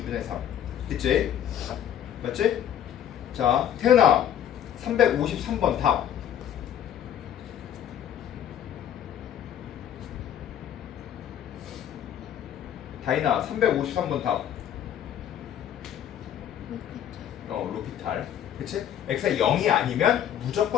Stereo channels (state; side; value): quieter; right; 10.2 dB